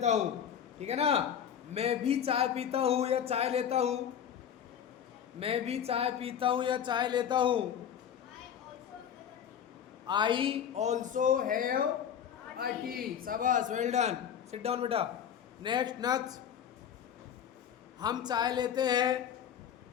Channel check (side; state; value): right; quieter; 8.8 dB